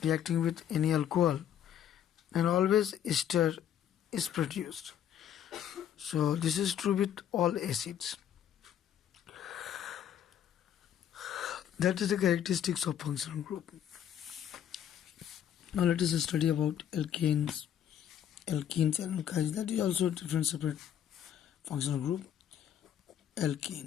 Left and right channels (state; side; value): quieter; right; 9.9 dB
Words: reacting with any alcohol, then always ester is produced. So this is true with all acids. That is the characteristics of functional group. Now let us study about alkanes and alkynes. That is also a different separate functional group.